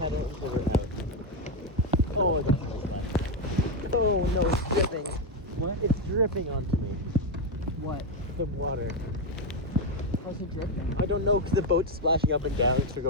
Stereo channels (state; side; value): normal; both; correlation 0.06